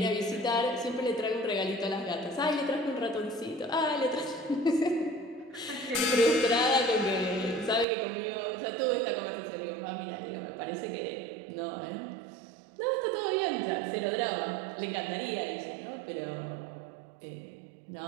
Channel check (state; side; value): drops out; left; at 7.9 s